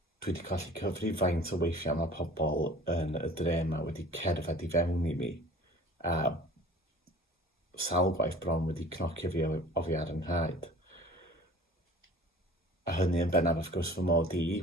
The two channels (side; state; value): both; normal; correlation 0.46